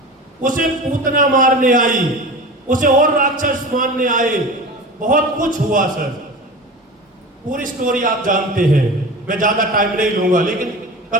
उसे पूतना मारने आई, उसे और राक्षस मारने आए, बहुत कुछ हुआ सर। पूरी स्टोरी आप जानते हैं, मैं ज्यादा टाइम नहीं लूंगा। लेकिन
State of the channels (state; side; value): normal; both; correlation 0.32